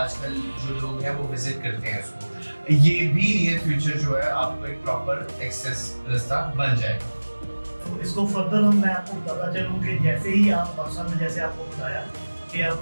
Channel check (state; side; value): inverted; both; correlation -1.00